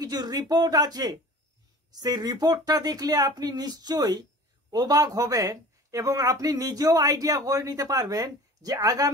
রিপোর্ট আছে, সেই রিপোর্টটা দেখলে আপনি নিশ্চয়ই অবাক হবেন এবং আপনি নিজেও আইডিয়া করে নিতে পারবেন যে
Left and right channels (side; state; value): both; normal; correlation 0.42